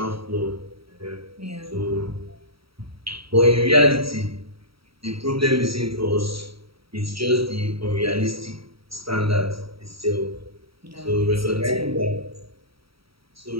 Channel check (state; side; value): late; left; 0.75 ms